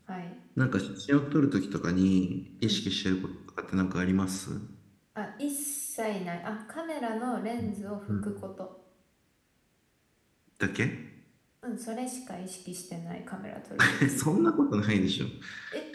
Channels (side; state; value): both; identical; correlation 1.00